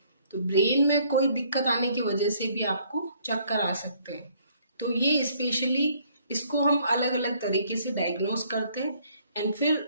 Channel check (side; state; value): both; inverted; correlation -0.63